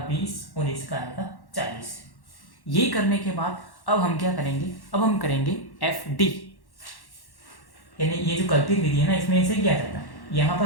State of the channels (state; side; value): late; right; 1.1 ms